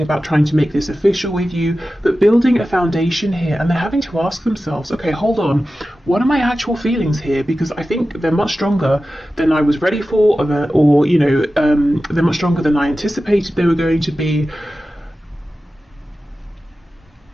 about trying to make this official with you, but building a foundation here. And they're having to ask themselves, okay, hold on, what are my actual feelings here? Because I think they're much stronger than I was ready for, they're much stronger than I anticipated they were going to be.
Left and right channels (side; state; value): both; normal; correlation 0.94